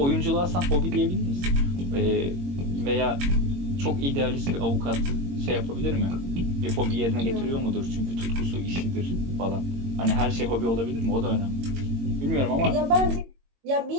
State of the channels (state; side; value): late; left; 22 ms